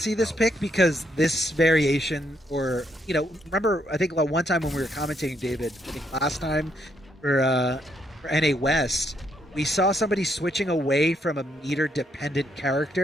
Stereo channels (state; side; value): normal; both; correlation 0.75